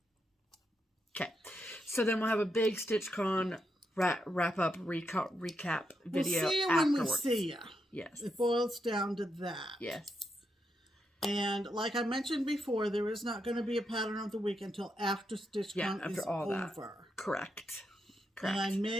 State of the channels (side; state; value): both; normal; correlation 0.82